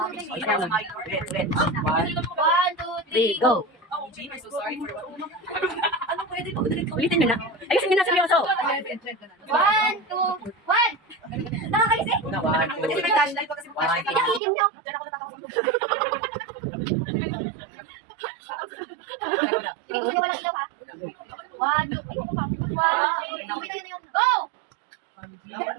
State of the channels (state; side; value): drops out; left; at 14.4 s